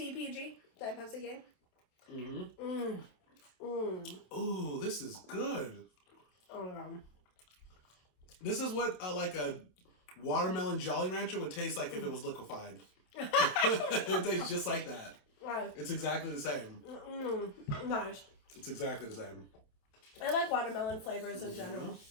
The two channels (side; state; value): right; late; 27 ms